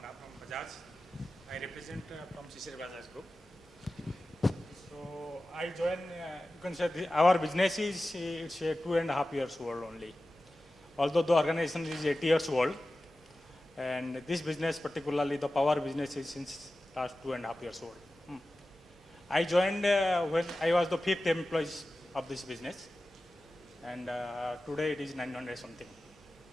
I joined, you can say our business is it's 2.5 years old only. Although the organization is 8 years old, and this business, particularly the power business, is since last 2.5 years old. I joined when I was the 5th employee of this business, and today it is 900 something.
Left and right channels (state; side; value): normal; both; correlation 0.95